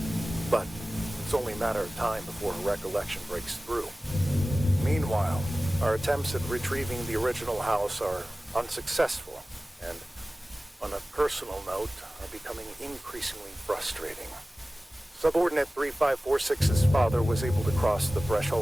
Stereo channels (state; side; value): normal; both; correlation 0.97